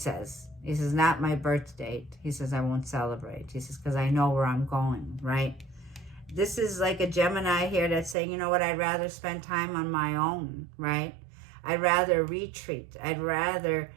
He says, not my birth date. He says, I won't celebrate. He says, because I know where I'm going, right? This is like a Gemini here that's saying, you know what, I'd rather spend time on my own, right? I'd rather retreat. I'd rather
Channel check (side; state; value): left; drops out; at 8.2 s